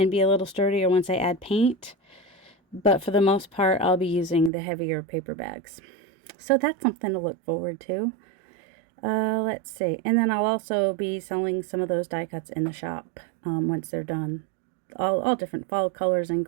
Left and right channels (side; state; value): left; drops out; at 4.5 s